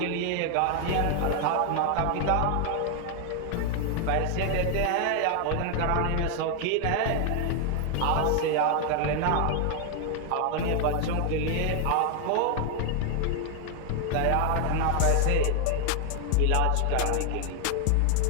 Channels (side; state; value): both; different; correlation 0.00